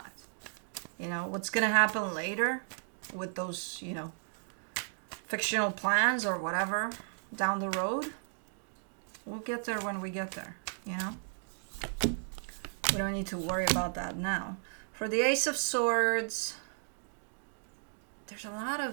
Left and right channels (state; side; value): silent; left; digital silence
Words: You know, what's going to happen later with those, you know, fictional plans or whatever down the road, we'll get there when we get there, you know. We don't need to worry about that now. For the Ace of Swords, there's a lot